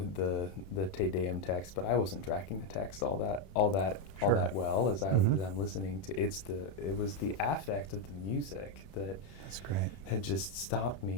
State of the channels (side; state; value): right; late; 31 ms